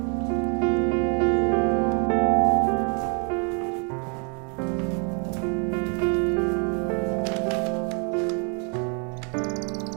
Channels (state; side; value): quieter; left; 38.4 dB